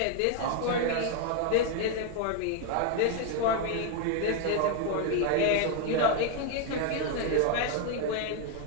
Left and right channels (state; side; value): different; both; correlation 0.00